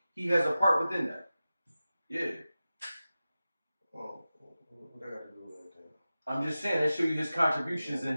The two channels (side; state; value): both; inverted; correlation -0.95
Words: has a part within that. Yeah. Oh, what I got to do with that then? I'm just saying that show you his contributions in